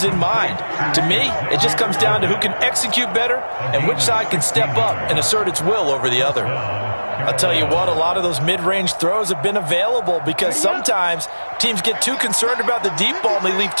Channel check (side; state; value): both; inverted; correlation -1.00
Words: in mind. To me, it just comes down to who can execute better and which side can step up and assert its will over the other. I'll tell you what, a lot of those mid-range throws have been available because sometimes teams get too concerned about the deep ball and they leave